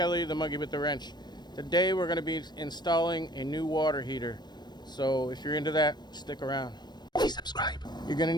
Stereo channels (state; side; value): late; right; 0.21 ms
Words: the monkey with the wrench. Today we're going to be installing a new water heater. So if you're into that, stick around. Please subscribe. You're going to